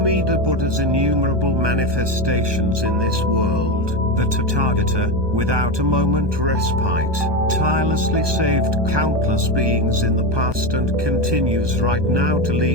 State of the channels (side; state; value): left; late; 1.2 ms